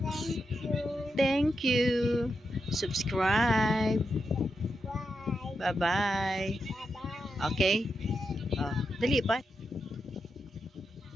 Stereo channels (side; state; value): both; normal; correlation 0.86